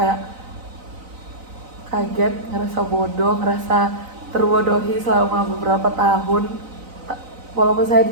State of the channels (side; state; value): left; late; 4.0 ms